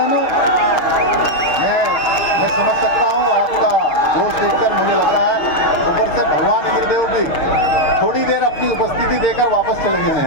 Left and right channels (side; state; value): right; late; 6.6 ms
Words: मैं समझ सकता हूँ आपका जोश देखकर मुझे लग रहा है ऊपर से भगवान इंद्रदेव भी थोड़ी देर अपनी उपस्थिति देकर वापस चले गए